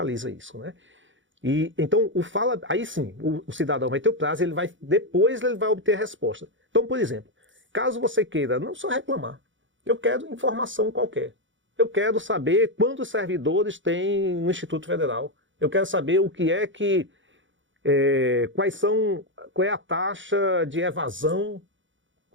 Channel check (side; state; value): left; late; 0.55 ms